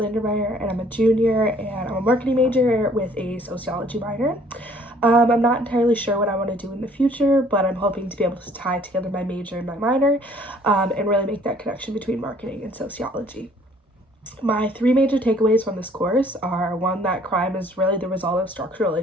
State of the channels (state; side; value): normal; both; correlation 0.59